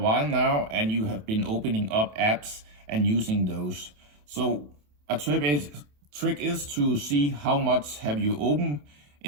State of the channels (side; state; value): left; late; 27 ms